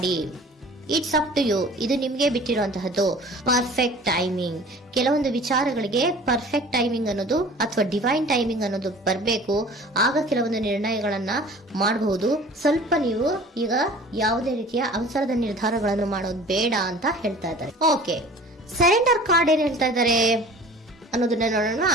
ಇಟ್ಸ್ ಅಪ್ ಟು ಯು, ಇದು ನಿಮ್ಗೆ ಬಿಟ್ಟಿರುವಂತಹದ್ದು. ಪರ್ಫೆಕ್ಟ್ ಟೈಮಿಂಗ್, ಕೆಲವೊಂದು ವಿಚಾರಗಳಿಗೆ ಪರ್ಫೆಕ್ಟ್ ಟೈಮಿಂಗ್ ಅನ್ನೋದು ಅಥವಾ ಡಿವೈನ್ ಟೈಮಿಂಗ್ ಅನ್ನೋದು ಬರಬೇಕು. ಆಗ ಕೆಲವೊಂದು ನಿರ್ಣಯಗಳನ್ನ ಮಾಡಬಹುದು. ಸ್ವಲ್ಪ ನೀವು ಈಗ ಯಾವುದೇ ರೀತಿಯ ಅವಸರದ ನಿರ್ಧಾರಗಳನ್ನು ಮಾಡೋದು ಬೇಡ ಅಂತ ಹೇಳ್ತಾ ಇದ್ದಾರೆ. ಓಕೆ, ಸರೆಂಡರ್ ಕಾರ್ಡ್ ಏನ್ ಹೇಳ್ತಾ ಇದ್ದಾರೆ ಅನ್ನೋದನ್ನ ನೋಡೋಣ.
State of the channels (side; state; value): both; normal; correlation 0.45